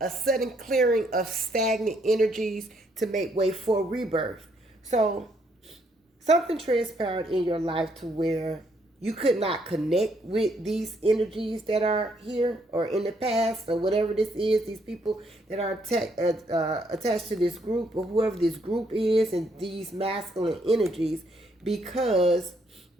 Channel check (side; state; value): both; normal; correlation 0.72